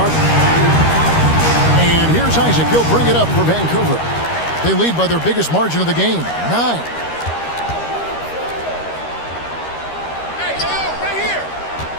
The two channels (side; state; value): right; late; 13 ms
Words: And here's Isaac. He'll bring it up for Vancouver. They lead by their biggest margin of the game, 9.